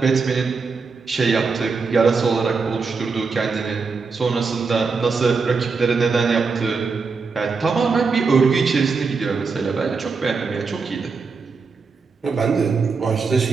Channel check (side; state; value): left; quieter; 4.7 dB